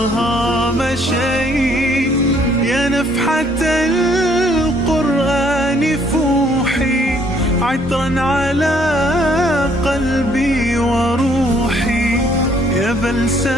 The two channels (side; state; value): both; normal; correlation 0.64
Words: مشيت يا نفحة القرآن فوحي عطرا على قلبي وروحي يا